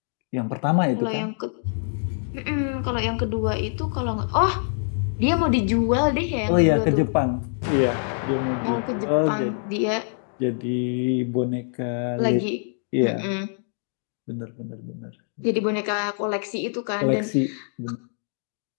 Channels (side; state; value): right; silent; digital silence